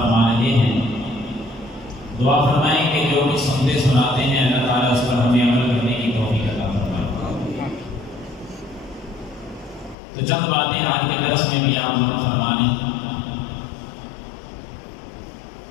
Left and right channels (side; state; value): right; drops out; at 10.0 s